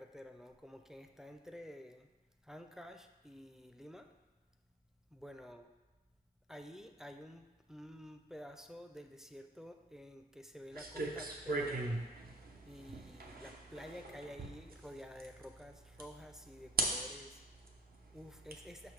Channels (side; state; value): both; normal; correlation 0.44